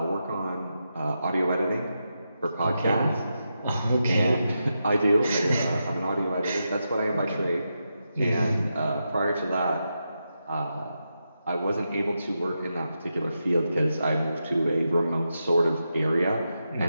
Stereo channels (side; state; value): both; inverted; correlation -0.87